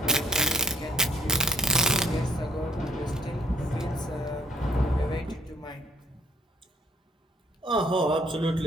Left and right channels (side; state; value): both; normal; correlation 0.60